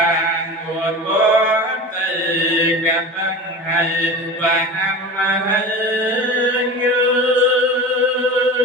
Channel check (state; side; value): normal; both; correlation 0.32